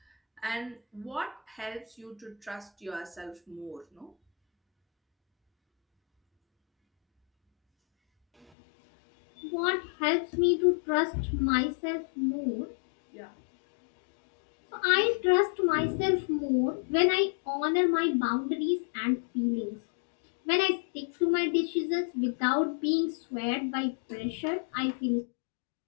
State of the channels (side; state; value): right; drops out; at 8.5 s